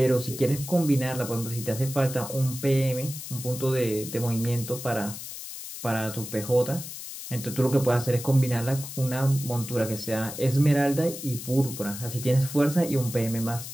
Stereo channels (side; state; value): left; noise; hiss, 10 dB below the sound